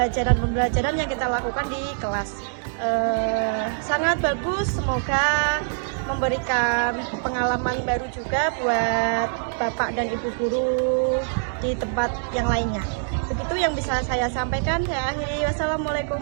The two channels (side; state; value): left; silent; 62 dB below the other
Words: yang kita lakukan di kelas. Sangat bagus, semoga memberikan pengalaman baru juga buat Bapak dan Ibu guru di tempat yang lainnya. Begitu yang bisa saya sampaikan. Saya akhiri. Wassalamualaikum